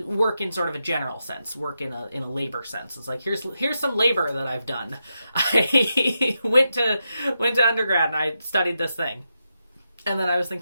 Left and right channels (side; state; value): both; inverted; correlation -0.86